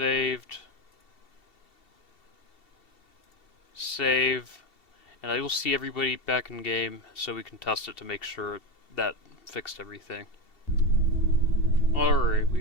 Save. And I will see everybody back in game so we can test it to make sure that fixed everything. Alright,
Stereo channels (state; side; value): late; right; 2.7 ms